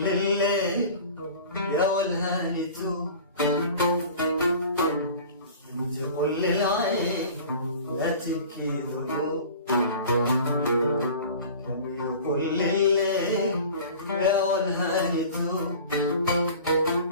يا والهاني توب، تقول للعين لا تبكي ذنوب. كم يقول الليل يا والهاني توب،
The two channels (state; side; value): inverted; both; correlation -0.41